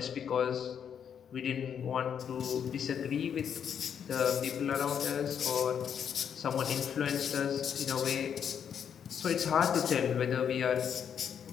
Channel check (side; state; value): right; quieter; 8.0 dB